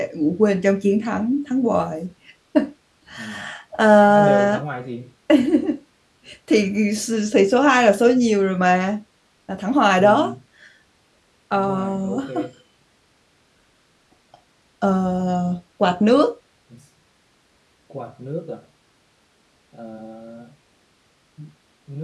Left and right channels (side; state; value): both; identical; correlation 1.00